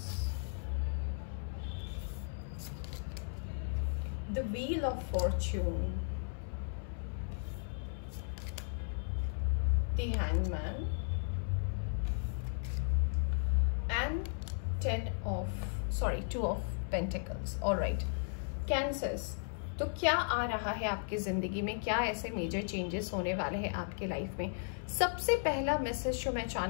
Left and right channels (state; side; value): silent; right; 54 dB below the other